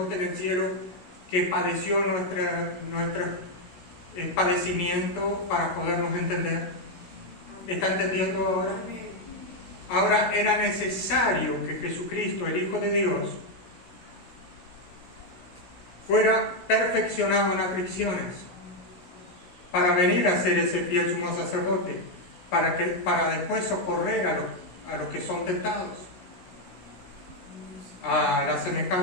en el cielo que padeció nuestro padecimiento para podernos entender? ¿Está entendiendo ahora? Ahora era necesario que Jesucristo, el Hijo de Dios, fuera perfeccionado en aflicciones para venir a ser ese fiel sumo sacerdote, para después socorrer a los que son tentados, a la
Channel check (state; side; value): late; right; 17 ms